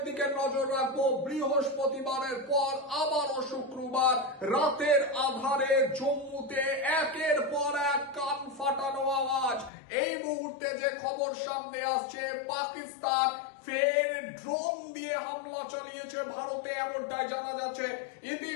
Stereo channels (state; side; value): drops out; right; at 9.7 s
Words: দিকে নজর রাখবো। বৃহস্পতিবারের পর আবারও শুক্রবার রাতের আধারে জম্মুতে একের পর এক কান ফাটানো আওয়াজ। এই মুহূর্তে যে খবর সামনে আসছে, পাকিস্তান ফের ড্রোন দিয়ে হামলা চালিয়েছে ভারতে, এমনটাই জানা যাচ্ছে।